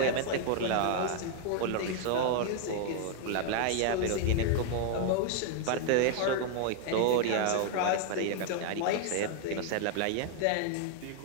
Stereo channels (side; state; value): both; different; correlation 0.00